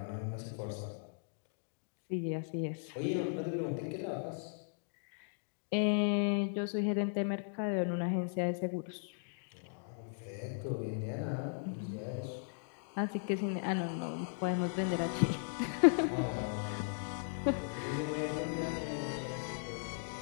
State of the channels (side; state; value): right; silent; digital silence